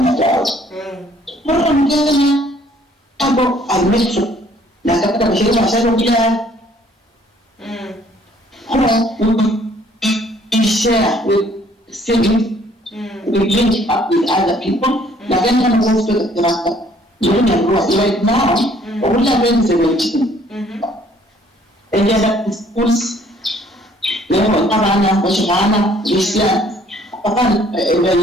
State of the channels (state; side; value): normal; both; correlation 0.61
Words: na town mara mgeni hapo almecho na katika mashirika mashauri pia we share with cities we link up with other people na kama mwanzo kwa yoni ya right now all our friends are waiting and yeah schools leo tabana washana Christian hapana